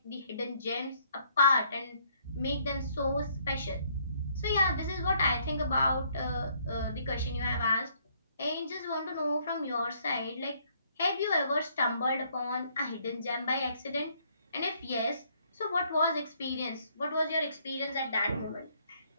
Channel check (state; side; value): inverted; both; correlation -0.66